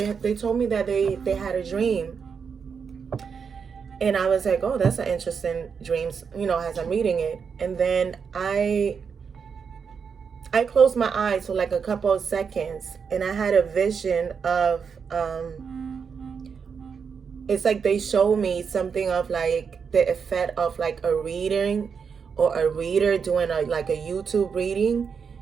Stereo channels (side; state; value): left; quieter; 6.2 dB